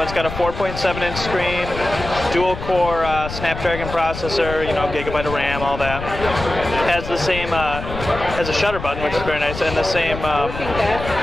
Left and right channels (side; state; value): left; noise; rumble, 9 dB below the sound